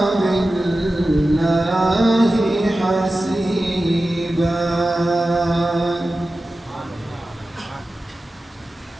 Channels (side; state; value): both; normal; correlation 0.94